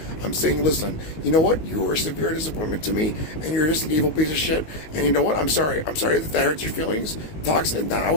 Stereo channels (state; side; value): late; right; 19 ms